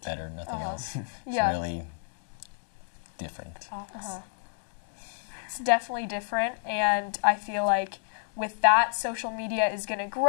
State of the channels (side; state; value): right; silent; 57 dB below the other